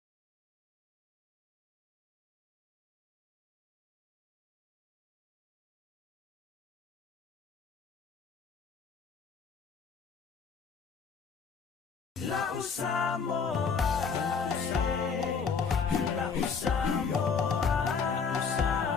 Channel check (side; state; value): right; quieter; 5.7 dB